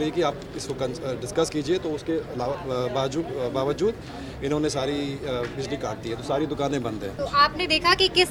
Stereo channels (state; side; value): identical; both; correlation 1.00